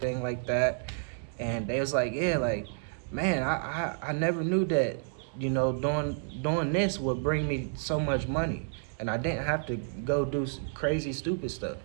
like that. And they was like, yeah, like, man, I never knew that, you know, doing this would bring me so much money, and I didn't have to go do crazy stupid stuff.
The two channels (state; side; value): silent; left; digital silence